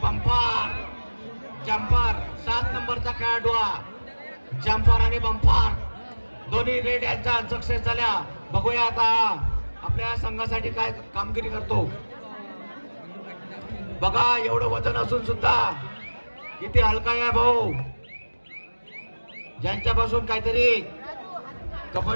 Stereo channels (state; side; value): inverted; both; correlation -1.00